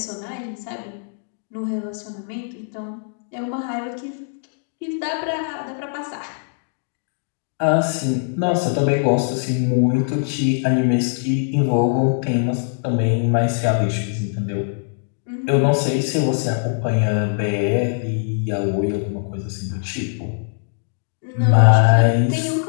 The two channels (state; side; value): silent; right; digital silence